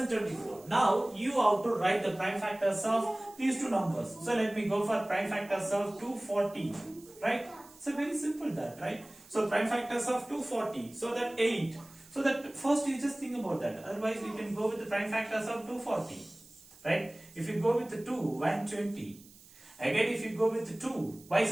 Now you have to write the prime factors of these two numbers. So let me go for prime factors of 240, right? So very simple that, right? So prime factors of 240, so that 8. So that first you just think about that. Otherwise you can go with the prime factors of 240, right? If you go with the 2, 120. Again, if you go with the 2, why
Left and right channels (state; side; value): noise; right; hiss, 23 dB below the sound